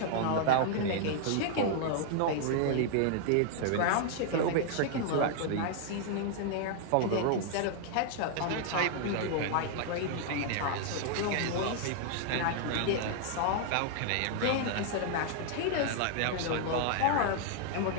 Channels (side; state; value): both; different; correlation 0.00